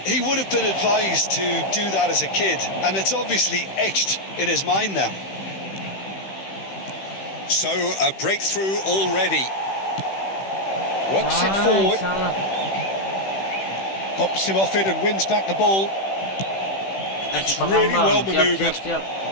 he would have been advised to do that as a kid, and it's obviously etched in his mind now. So, a breakthrough already. Works it forward. Pops him off it and wins back the ball. That's really well manoeuvred.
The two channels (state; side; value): late; right; 15 ms